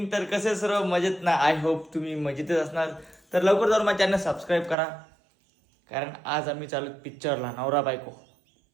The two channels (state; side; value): drops out; left; at 4.8 s